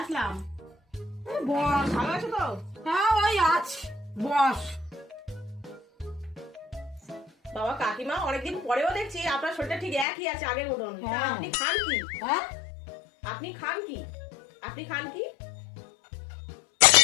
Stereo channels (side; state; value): right; drops out; at 10.1 s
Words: বস। ভালো আছো তো? হ্যাঁ ওই আছি, বস। বাবা কাকিমা অনেকদিন পরেও দেখছি আপনার শরীরটা ঠিক একই আছে আগের মতন। তা হ্যাঁ। আপনি খান কি? হ্যাঁ আপনি খান কি? আপনি খান কি?